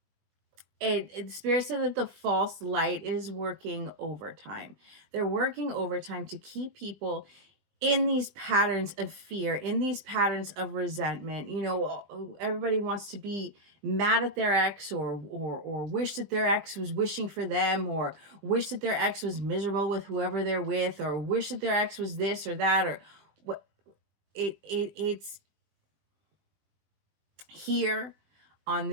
Spirit said that the false light is working overtime. They're working overtime to keep people in these patterns of fear, in these patterns of resentment. You know, everybody wants to be mad at their ex, or wish that their ex was wishing for them, or wish that their ex was miserable with whoever they're with, or wish that their ex was this or that, or what. It's here on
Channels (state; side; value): late; left; 20 ms